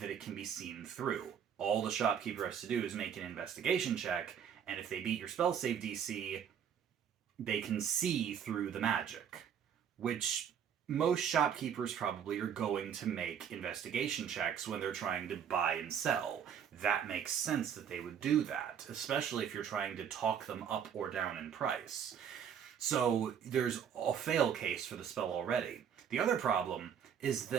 that it can be seen through. All the shopkeeper has to do is make an investigation check, and if they beat your spell save DC, they can see through the magic, which most shopkeepers probably are going to make investigation checks when they're trying to buy and sell. That makes sense that they would do that, especially if you're trying to talk them up or down in price. So there's a fail case for the spell already. The other problem is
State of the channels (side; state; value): left; quieter; 8.2 dB